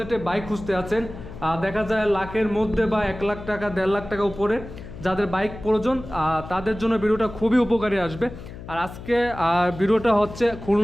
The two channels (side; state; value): left; noise; hum, 13 dB below the sound